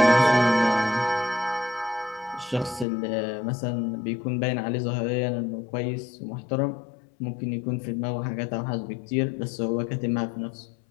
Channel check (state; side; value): drops out; right; at 2.9 s